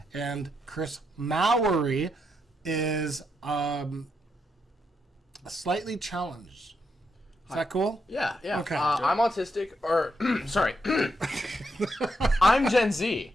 and Chris Mowry, is slightly challenged. Is that cool? Yeah. Okay. I'm autistic, or sorry, I'm Gen Z,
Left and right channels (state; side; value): normal; both; correlation 0.81